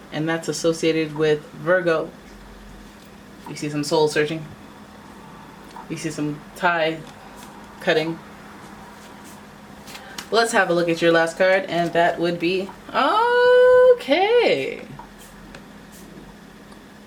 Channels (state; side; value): identical; both; correlation 1.00